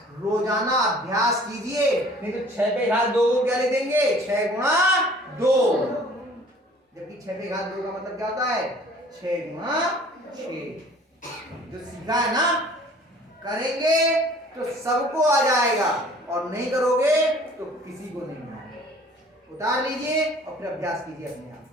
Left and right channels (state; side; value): normal; both; correlation 0.51